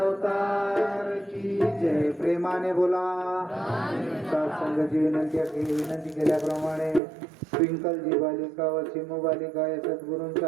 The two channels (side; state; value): left; drops out; at 7.0 s